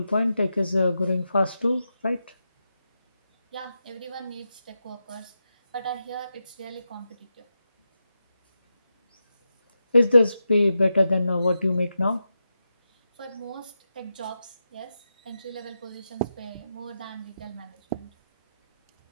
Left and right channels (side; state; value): both; inverted; correlation -0.88